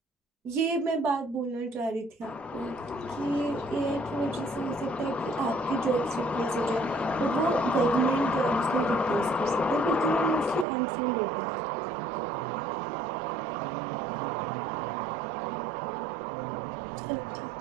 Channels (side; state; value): left; drops out; at 10.7 s